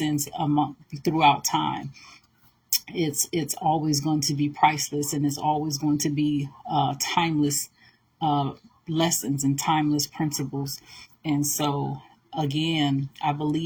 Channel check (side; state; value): both; identical; correlation 1.00